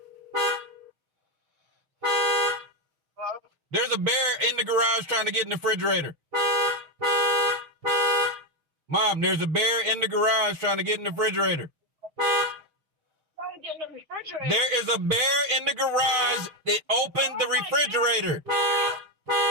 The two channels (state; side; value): late; left; 6.5 ms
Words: There's a bear in the garage trying to get in the refrigerator. Mom, there's a bear in the garage trying to get in the refrigerator. There is a bear in the garage that opened the refrigerator.